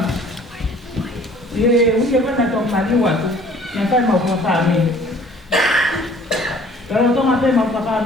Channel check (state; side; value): normal; both; correlation 0.54